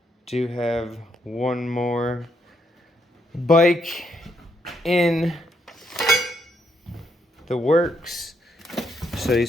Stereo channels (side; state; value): both; normal; correlation 0.76